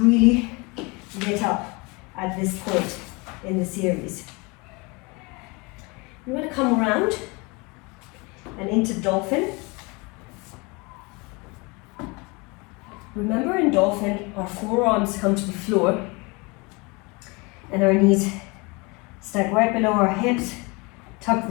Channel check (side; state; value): right; quieter; 27.5 dB